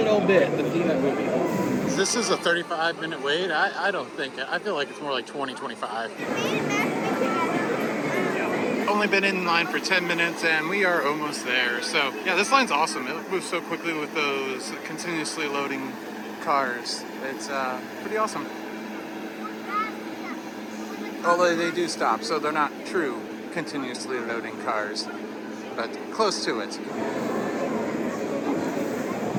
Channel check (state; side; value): identical; both; correlation 1.00